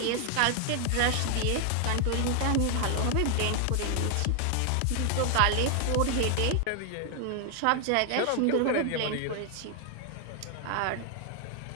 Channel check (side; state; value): both; different; correlation 0.00